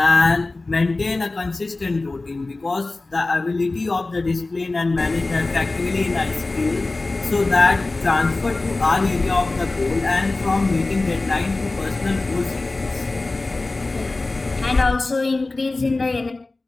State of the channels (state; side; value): quieter; right; 3.2 dB